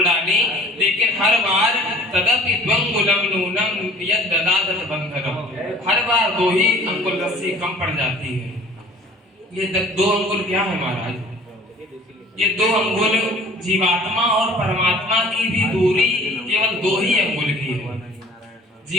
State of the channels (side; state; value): both; normal; correlation 0.49